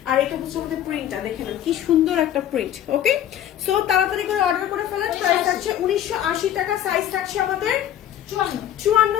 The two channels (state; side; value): quieter; right; 11.1 dB